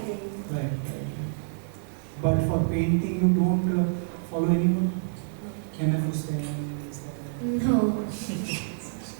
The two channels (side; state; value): left; silent; 60 dB below the other